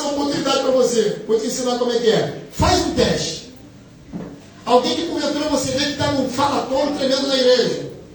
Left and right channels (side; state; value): both; identical; correlation 1.00